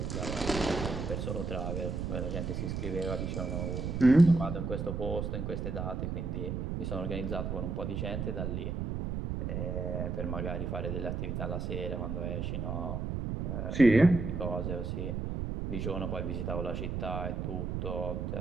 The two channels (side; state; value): right; noise; rumble, 2 dB below the sound